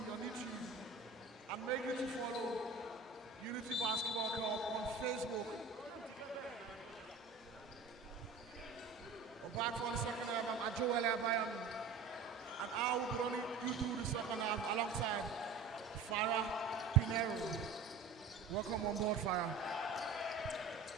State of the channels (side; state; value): left; quieter; 4.8 dB